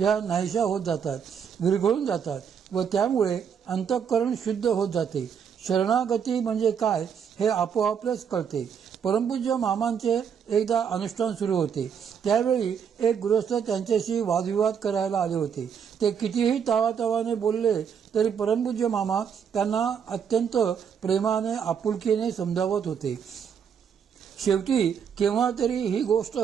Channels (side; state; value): left; quieter; 7.4 dB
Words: नाहीशा होत जातात, विरघळून जातात व त्यामुळे अंतःकरण शुद्ध होत जाते. शरणागती म्हणजे काय हे आपोआपच कळते. परमपूज्य मामांचे एकदा अनुष्ठान सुरू होते. त्यावेळी एक गृहस्थ त्यांच्याशी वादविवाद करायला आले होते. ते कितीही तावातावाने बोलले तरी परमपूज्य मामा त्यांना अत्यंत प्रेमाने आपुलकीने समजावत होते. शेवटी केव्हा तरी ही गोष्ट